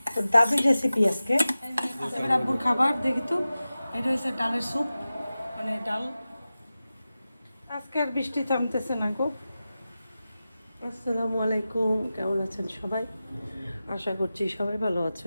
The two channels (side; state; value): both; inverted; correlation -0.94